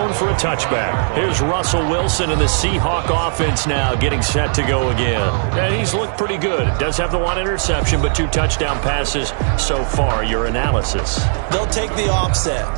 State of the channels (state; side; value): silent; left; 66 dB below the other